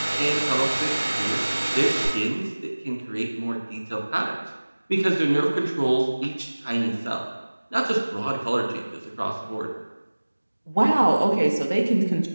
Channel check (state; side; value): inverted; both; correlation -1.00